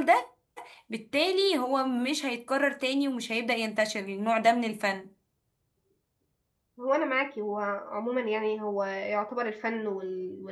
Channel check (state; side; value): identical; both; correlation 1.00